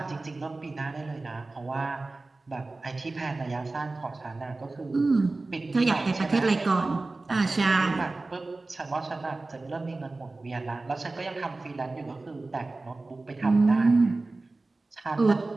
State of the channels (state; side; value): quieter; left; 3.3 dB